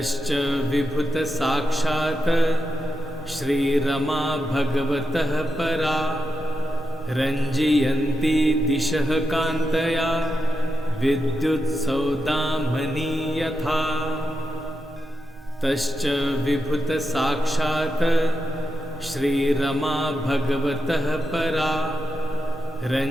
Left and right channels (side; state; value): both; normal; correlation 0.87